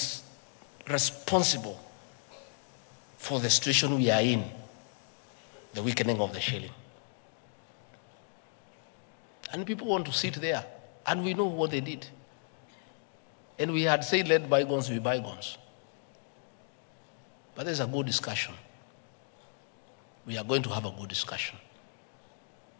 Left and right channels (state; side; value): silent; right; 55 dB below the other